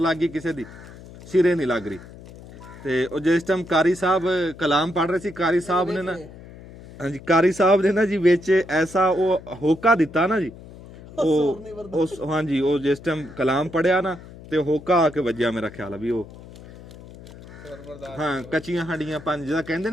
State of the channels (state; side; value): noise; left; hum, 18 dB below the sound